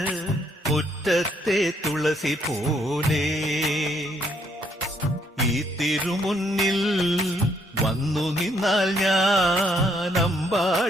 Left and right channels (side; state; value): both; normal; correlation 0.70